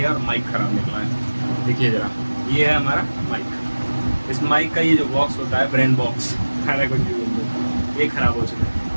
है और माइक ख़राब निकला है। देखिए ज़रा, ये है हमारा माइक। इस माइक का ये जो बॉक्स होता है, ब्रेन बॉक्स, खाना कुछ भी बोल दो, ये ख़राब हो चुका है।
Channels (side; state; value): both; inverted; correlation -1.00